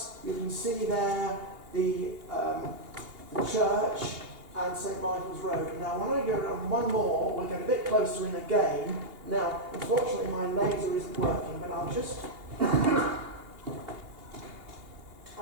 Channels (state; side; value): late; left; 2.8 ms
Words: you can see there the church, and St Michael's Road. Now when I go around one more, we'll get a bit closer in again. Now, unfortunately my laser isn't working, but I'll just...